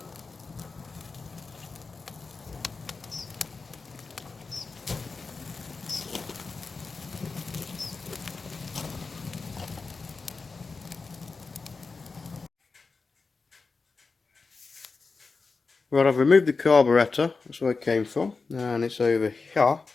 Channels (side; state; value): right; quieter; 4.3 dB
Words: Right, I've removed the carburetor, that's where it came from, and it's over here.